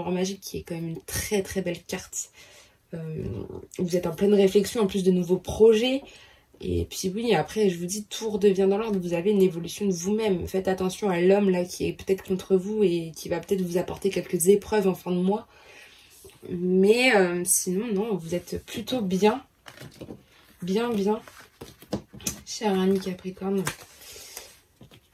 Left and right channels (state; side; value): identical; both; correlation 1.00